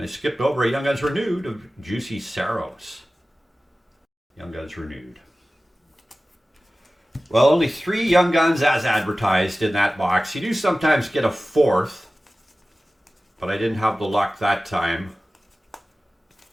I skipped over a Young Guns renewed of Juicy Saros. Young Guns renewed. Well, only 3 Young Guns as advertised in that box. You do sometimes get a 4th, but I didn't have the luck that time.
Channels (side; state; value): both; normal; correlation 0.96